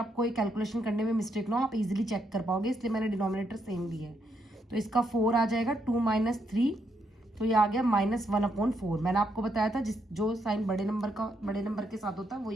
ये कैलकुलेशन करने में मिस्टेक ना हो, आप इजीली चेक कर पाओगे, इसलिए मैंने डिनोमिनेटर सेम लिया है। तो इसका 4 आ जाएगा, 2 - 3, तो ये आ गया -1/4। मैंने आपको बताया था जो साइन बड़े नंबर के साथ होता है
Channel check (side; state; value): both; normal; correlation 0.77